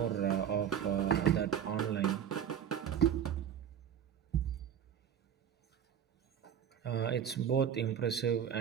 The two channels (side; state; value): left; quieter; 9.0 dB